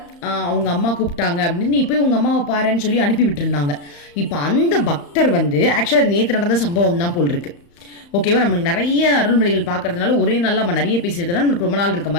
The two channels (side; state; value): right; late; 35 ms